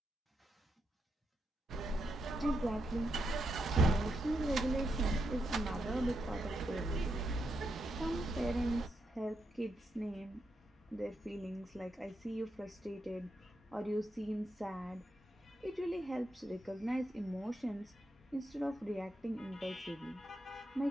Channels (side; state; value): both; normal; correlation 0.82